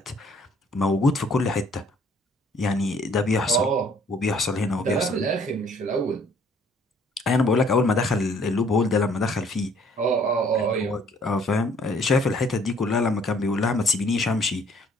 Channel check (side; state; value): both; normal; correlation 0.60